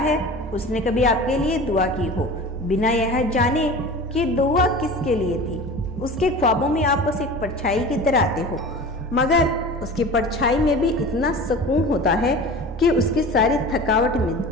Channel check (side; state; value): both; normal; correlation 0.36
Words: उसने कभी आपके लिए दुआ की हो, बिना यह जाने कि दुआ किसके लिए थी। उसके ख्वाबों में आप बस एक परछाई की तरह आते हो, मगर उसकी परछाई में भी इतना सुकून होता है कि उसकी सारी थकावट